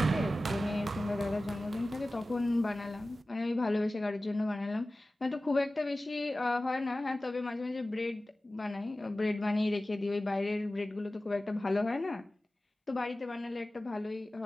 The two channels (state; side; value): normal; both; correlation 0.96